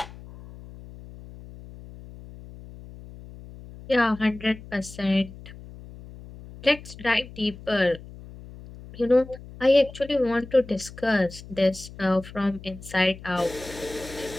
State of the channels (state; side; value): noise; left; hum, 16 dB below the sound